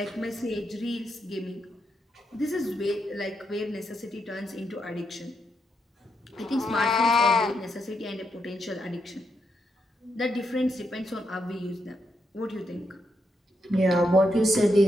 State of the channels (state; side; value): normal; both; correlation 0.82